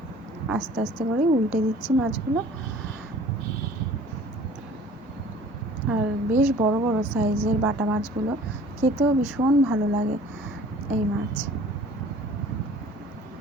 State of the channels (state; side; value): normal; both; correlation 0.49